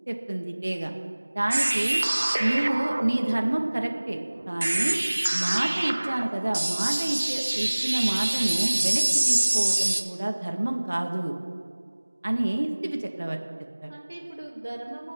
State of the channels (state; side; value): inverted; both; correlation -1.00